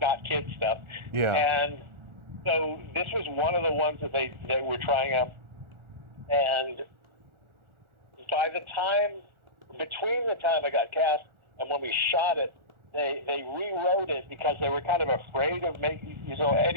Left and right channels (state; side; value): late; left; 1.4 ms